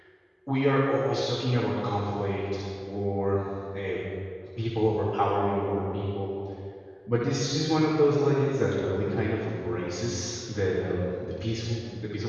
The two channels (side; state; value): both; identical; correlation 1.00